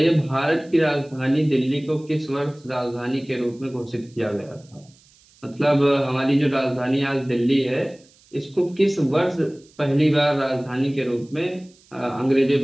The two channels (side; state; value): right; noise; hiss, 30 dB below the sound